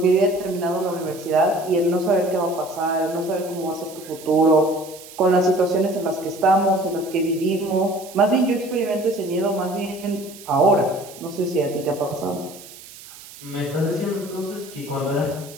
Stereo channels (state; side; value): noise; right; hiss, 18 dB below the sound